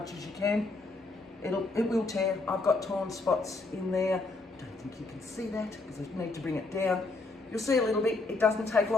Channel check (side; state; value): right; quieter; 3.4 dB